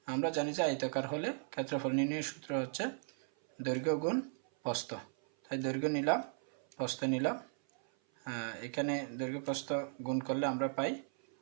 আমরা জানি যে আয়তাকার হলে ক্ষেত্রফল নির্ণয়ের সূত্র হচ্ছে দৈর্ঘ্য গুণ প্রস্থ। তাই দৈর্ঘ্য নিলাম, প্রস্থ নিলাম। এখানে দৈর্ঘ্য প্রস্থ গুণ করলে আমরা পাই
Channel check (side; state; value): left; silent; 53 dB below the other